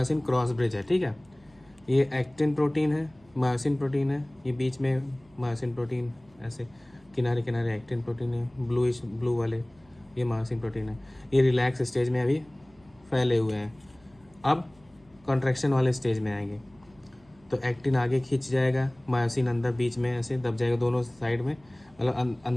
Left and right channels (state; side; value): noise; right; hum, 30 dB below the sound